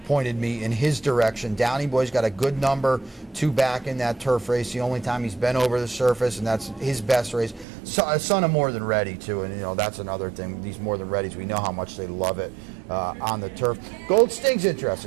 pointed me in his direction. Downey Boy's got a good number 2 back in that turf race. The only time he's been over the surface, and that's his best race. So, a son of More Than Ready, too, and, you know, that's another thing. These More Than Readies, we know how much they love it on the turf. Gold Sting's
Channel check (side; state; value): left; drops out; at 7.7 s